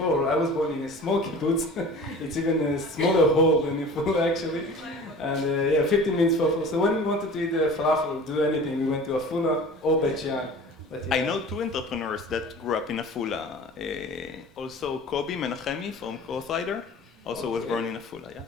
I was born in a small kibbutz. It's even a smaller hole than Afula, actually. And yeah, 15 minutes for Afula. So when we wanted to eat falafel, do anything, we went to Afula or Bet Shean. But, yeah. I know 2 entrepreneurs that grew up in Afula. Also, Kobi Menachemi from Crossrider also was born in Afula, yeah.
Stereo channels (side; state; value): both; normal; correlation 0.41